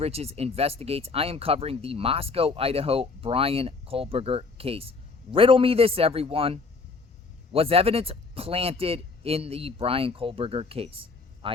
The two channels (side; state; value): right; quieter; 4.2 dB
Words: Investigates. I am covering the Moscow, Idaho Bryan Kohberger case. Riddle me this, everyone. Was evidence planted in the Bryan Kohberger case?